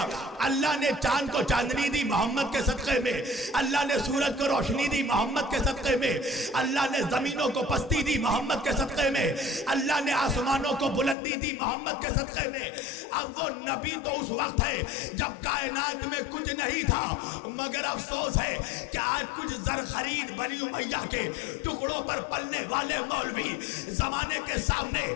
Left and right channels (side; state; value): right; drops out; at 11.2 s